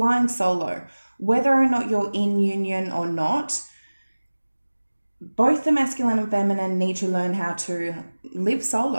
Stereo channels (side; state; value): both; inverted; correlation -1.00